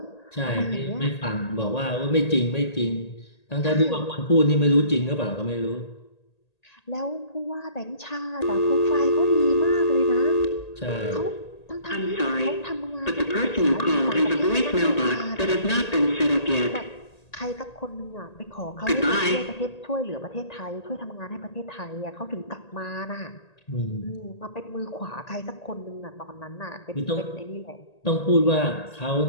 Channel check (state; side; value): late; right; 1.8 ms